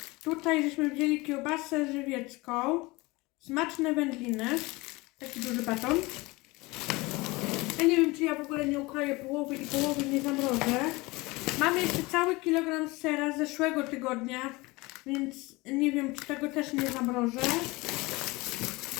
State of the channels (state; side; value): quieter; right; 23.0 dB